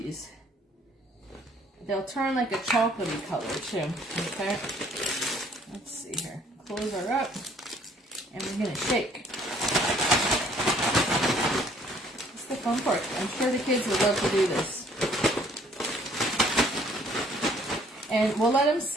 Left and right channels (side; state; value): both; normal; correlation 0.60